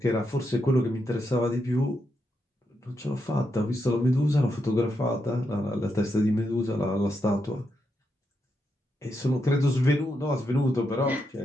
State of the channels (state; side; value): normal; both; correlation 0.83